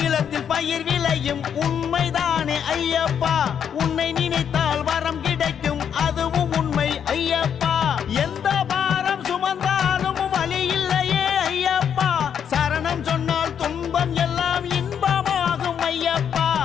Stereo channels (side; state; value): right; quieter; 8.2 dB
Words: பயிர் விளையும் உண்மைதானே ஐயப்பா. உன்னை நினைத்தால் வரம் கிடைக்கும் அதுவும் உண்மை ஐயப்பா. எந்த பாரம் சுமந்தாலும் வலி இல்லையே ஐயப்பா. சரணம் சொன்னால் துன்பம் எல்லாம் இன்பமாகும் ஐயப்பா.